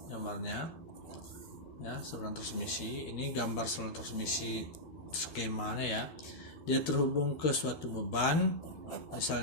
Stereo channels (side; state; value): right; late; 13 ms